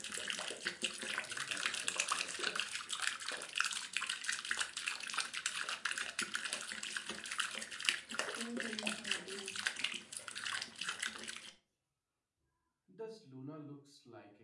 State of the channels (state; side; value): identical; both; correlation 1.00